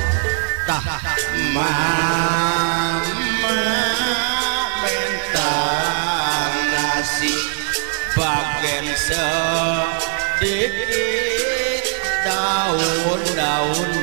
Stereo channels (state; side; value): silent; left; 60 dB below the other